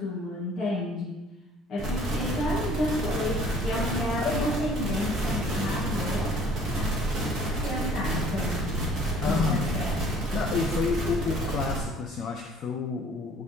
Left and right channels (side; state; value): both; normal; correlation 0.54